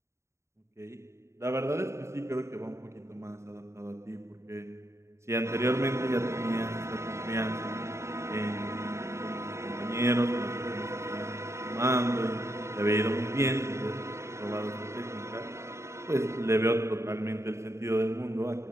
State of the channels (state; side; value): late; left; 0.14 ms